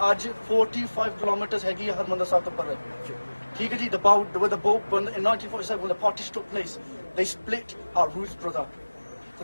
aaj 45 kilometers hegi Harmandir Sahib to parre. Theek hai ji, where the boat in 1947 when the partition took place, they split our roots, brother. For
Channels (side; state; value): both; inverted; correlation -1.00